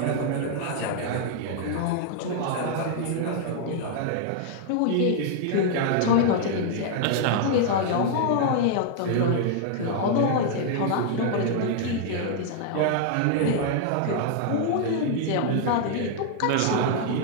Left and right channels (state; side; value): different; both; correlation 0.00